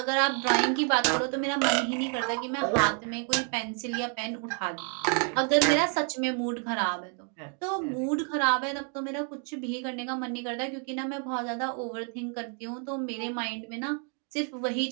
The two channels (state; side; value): quieter; left; 39.3 dB